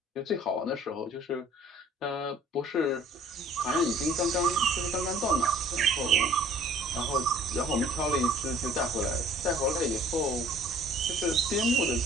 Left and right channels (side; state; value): both; normal; correlation 0.53